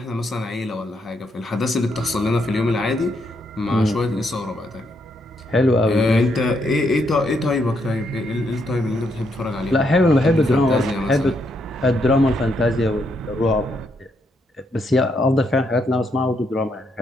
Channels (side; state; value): both; normal; correlation 0.76